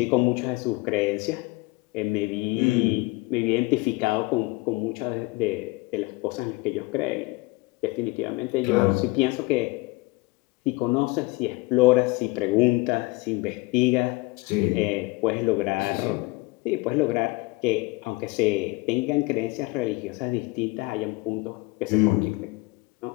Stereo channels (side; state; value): right; quieter; 23.5 dB